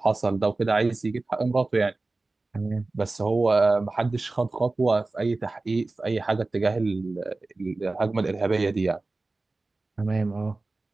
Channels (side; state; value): left; quieter; 3.3 dB